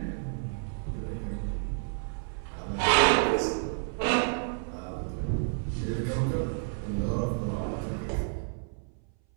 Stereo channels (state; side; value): silent; left; 58 dB below the other